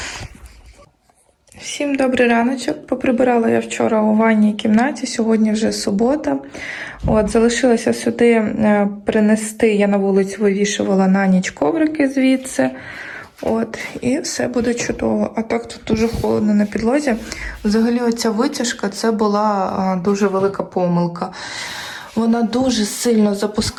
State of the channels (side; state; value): both; identical; correlation 1.00